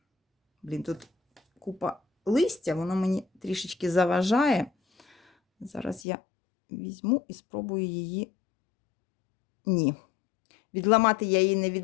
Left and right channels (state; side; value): drops out; right; at 6.0 s